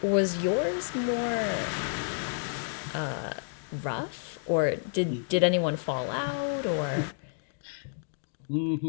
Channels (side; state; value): right; silent; digital silence